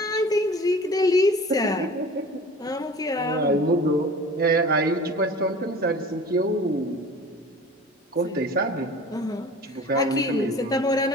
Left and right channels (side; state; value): both; normal; correlation 0.41